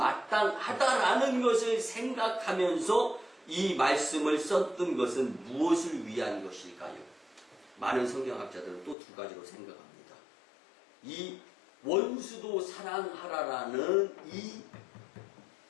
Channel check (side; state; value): right; drops out; at 9.0 s